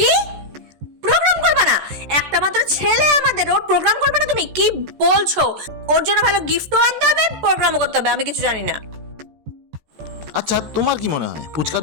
প্রোগ্রাম করবে না? একটা মাত্র ছেলে আমাদের, ওর প্রোগ্রাম করবে না? তুমি কি বলছো? ওর জন্য ভালো গিফটও আনতে হবে, প্রোগ্রামও করতে হবে, আমি কিছু জানি না। আচ্ছা, তোমার কি মনে হয় পুচকার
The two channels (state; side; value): late; left; 14 ms